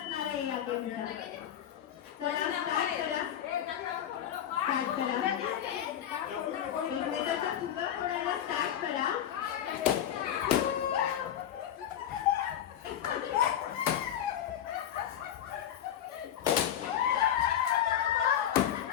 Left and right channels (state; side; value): quieter; right; 10.3 dB